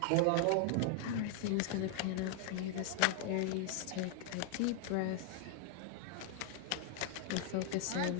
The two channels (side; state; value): both; different; correlation 0.00